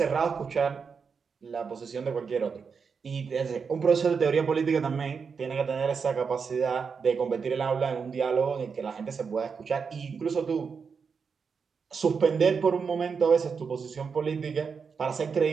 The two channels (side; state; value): left; quieter; 5.7 dB